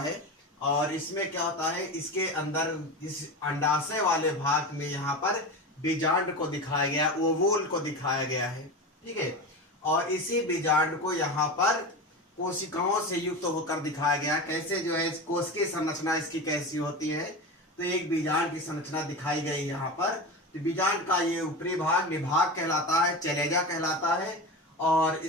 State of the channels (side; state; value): both; normal; correlation 0.25